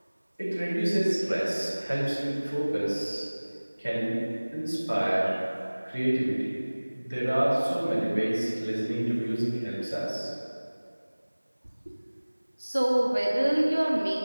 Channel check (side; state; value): both; inverted; correlation -1.00